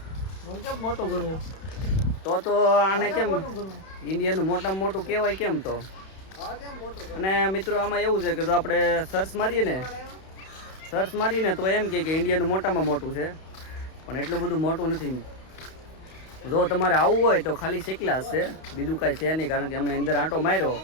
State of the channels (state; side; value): late; right; 31 ms